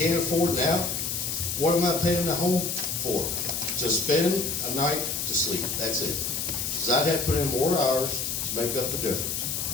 can't afford now. What am I paying the home for? To spend a night to sleep. That's it. Because I'd have to put in more hours to make up the difference.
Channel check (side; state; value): left; noise; hiss, 2 dB below the sound